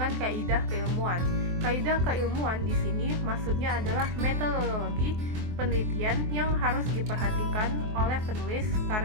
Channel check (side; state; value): left; late; 23 ms